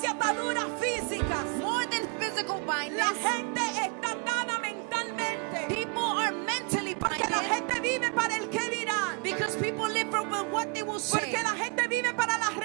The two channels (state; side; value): quieter; left; 34.3 dB